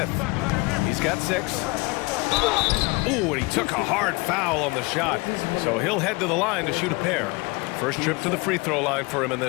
He's got 6. Ooh, and he took a hard foul on the shot. So he'll head to the line to shoot a pair. First trip to the free throw line for him in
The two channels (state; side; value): quieter; right; 25.6 dB